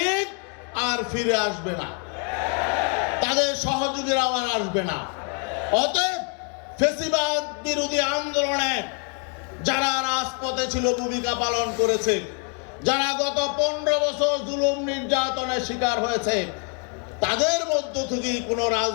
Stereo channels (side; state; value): right; quieter; 38.8 dB